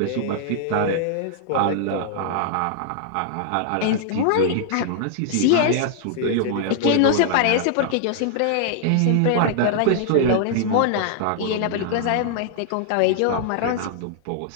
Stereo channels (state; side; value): different; both; correlation -0.01